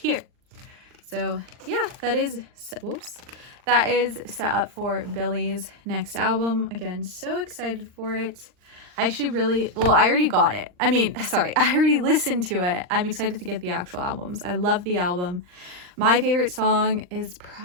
So yeah, that is set up for Billie's next album. Again, so excited for it. I actually I already got it. I already listened to it. I'm excited to get the actual albums. I love the album. My favorite song is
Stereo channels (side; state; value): left; late; 39 ms